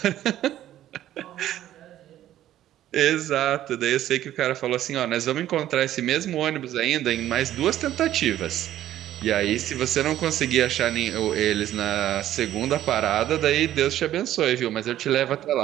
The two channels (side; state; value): left; quieter; 12.7 dB